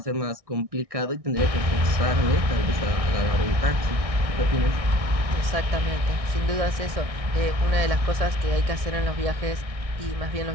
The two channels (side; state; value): left; late; 1.6 ms